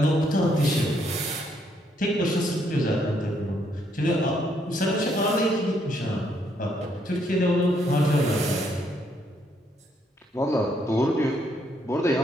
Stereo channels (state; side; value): normal; both; correlation 0.72